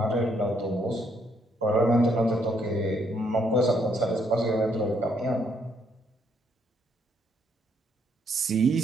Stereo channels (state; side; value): normal; both; correlation 0.72